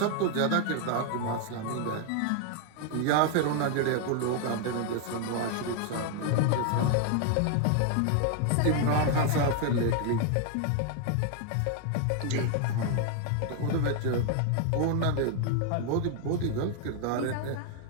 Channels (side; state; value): both; different; correlation 0.00